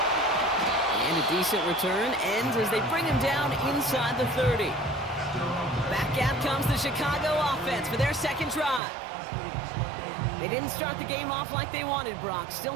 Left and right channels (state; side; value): drops out; left; at 8.8 s